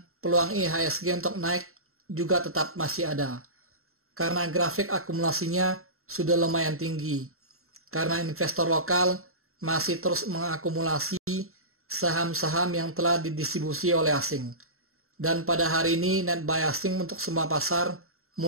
peluang IHSG untuk naik juga tetap masih ada karena grafik akumulasinya sudah lumayan tinggi. Karena investor lokal masih terus mengakumulasi saham-saham yang telah didistribusi oleh asing. Dan pada hari ini net buy asing untuk semua pasar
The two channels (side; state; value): left; late; 0.62 ms